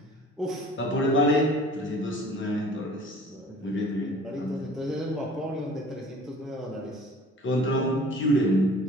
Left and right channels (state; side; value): normal; both; correlation 0.48